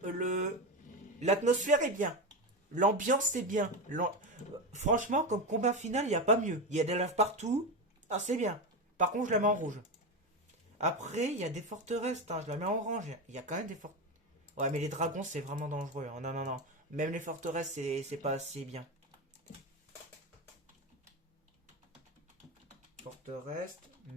l'atmosphère est bien. L'ambiance est bien. Franchement, comme combat final, il n'y a pas mieux. Il y a des laves partout. Ah, c'est bien. Par contre, je la mets en rouge. Après, il y a des forteresses. Hein, je la mets en orange. Il y a quand même des forteresses. Ouais, mais les dragons, c'est vraiment dangereux. Hein. Non, non, non. Même les forteresses, c'est pas assez bien. Forteresse,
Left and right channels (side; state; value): both; normal; correlation 0.17